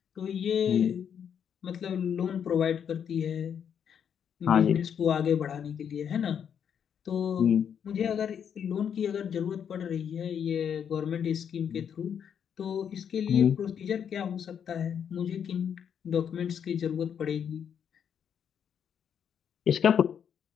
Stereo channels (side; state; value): right; quieter; 8.1 dB